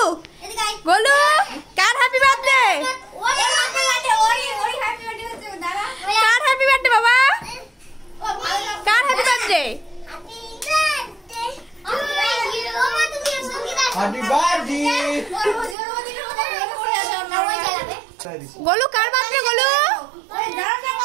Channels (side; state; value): left; drops out; at 15.8 s